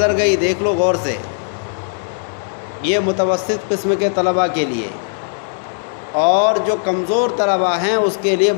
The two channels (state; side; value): silent; right; digital silence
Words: گئی، دیکھ لو غور سے۔ یہ متوسط قسم کے طلباء کے لیے۔ اور جو کمزور طلباء ہیں اس کے لیے